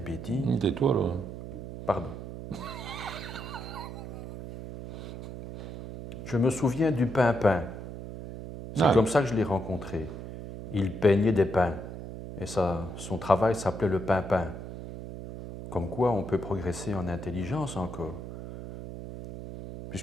Tais-toi, là. Pardon. Je me souviens du Pimpin. C'est Ah. comme ça que je l'ai rencontré. Il peignait des pins. Et son travail s'appelait le Pimpin. Comme quoi on peut progresser en intelligence encore.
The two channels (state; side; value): noise; right; hum, 9 dB below the sound